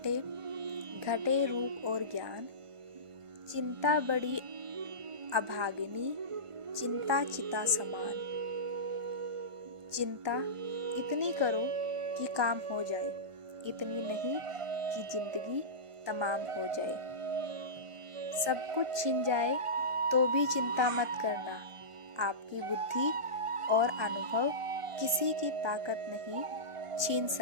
घटे रूप और ज्ञान। चिंता बड़ी अभागिनी, चिंता चिता समान। चिंता इतनी करो कि काम हो जाए, इतनी नहीं कि जिंदगी तमाम हो जाए। सब कुछ छिन जाए तो भी चिंता मत करना। आपकी बुद्धि और अनुभव किसी की ताकत नहीं छीन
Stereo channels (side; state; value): left; late; 1.2 ms